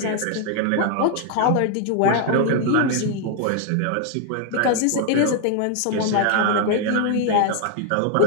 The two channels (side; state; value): both; different; correlation 0.00